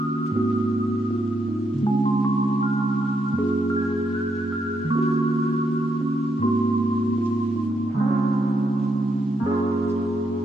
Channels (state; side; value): normal; both; correlation 0.79